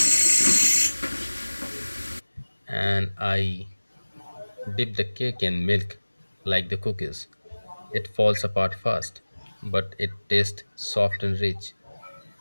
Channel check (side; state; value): both; inverted; correlation -1.00